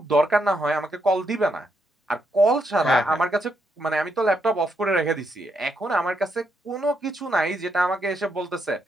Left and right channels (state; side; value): normal; both; correlation 0.79